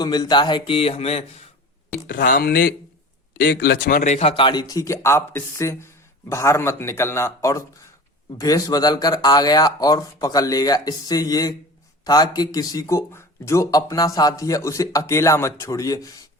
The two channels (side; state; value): both; normal; correlation 0.36